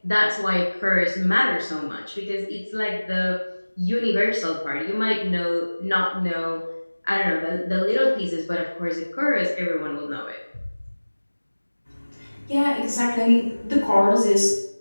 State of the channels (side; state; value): both; inverted; correlation -1.00